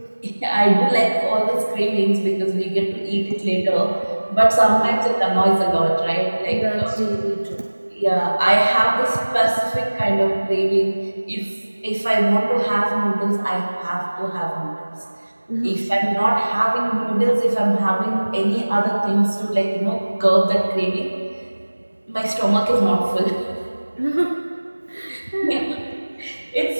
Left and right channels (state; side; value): inverted; both; correlation -1.00